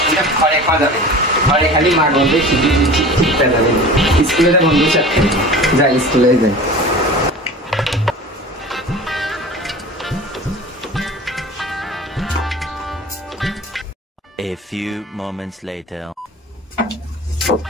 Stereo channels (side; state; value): both; normal; correlation 0.38